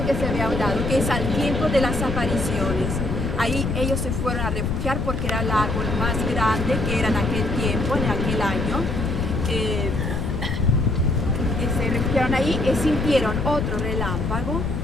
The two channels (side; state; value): left; noise; rumble, 2 dB below the sound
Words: que se había dado, que es al tiempo de las apariciones. Ahí ellos se fueron a refugiar porque era el árbol más grande que era en aquel tiempo, en aquel año. Se refugiaron ahí y sintieron otro relámpago.